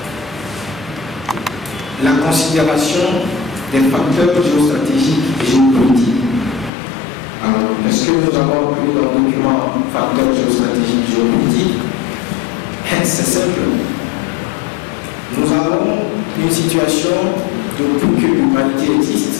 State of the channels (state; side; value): drops out; right; at 6.7 s